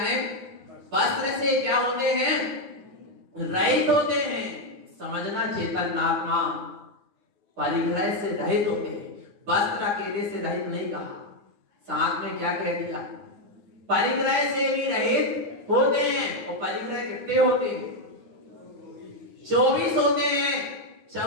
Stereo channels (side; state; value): left; late; 9.5 ms